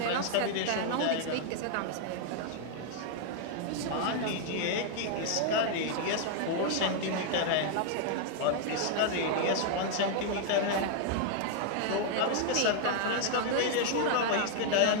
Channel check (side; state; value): both; different; correlation 0.00